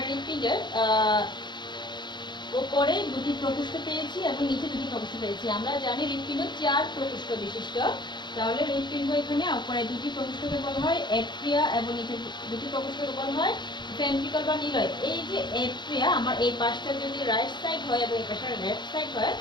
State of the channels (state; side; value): late; right; 0.22 ms